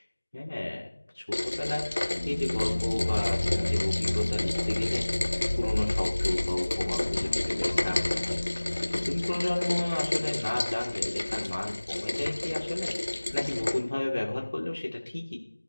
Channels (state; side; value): inverted; both; correlation -1.00